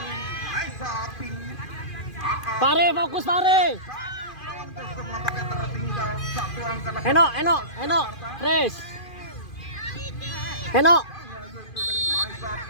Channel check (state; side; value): late; right; 2.4 ms